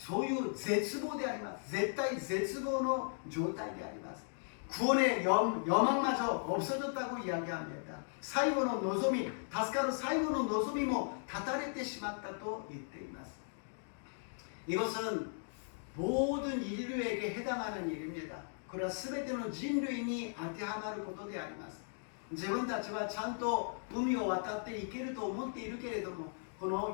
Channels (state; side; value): silent; right; digital silence